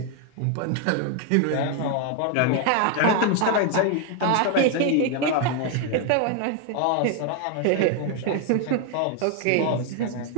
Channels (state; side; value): different; both; correlation 0.01